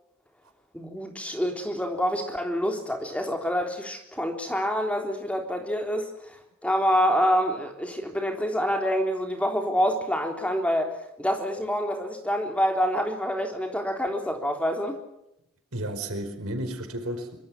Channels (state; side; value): normal; both; correlation 0.76